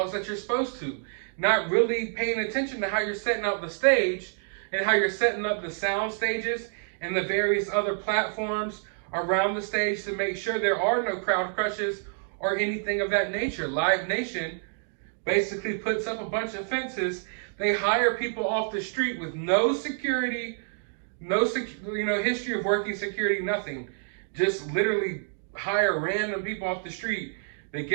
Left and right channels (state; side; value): silent; left; digital silence